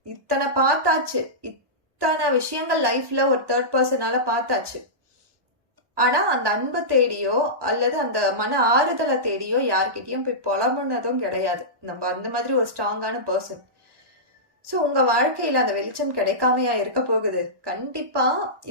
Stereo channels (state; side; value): late; left; 1.2 ms